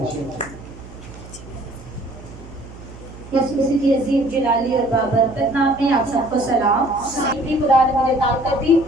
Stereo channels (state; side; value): noise; right; hum, 17 dB below the sound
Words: یسوع مسیح کی عظیم جلالی اور بابرکت نام میں آپ سب کو سلام۔ خدا نے مجھے طاقت دی،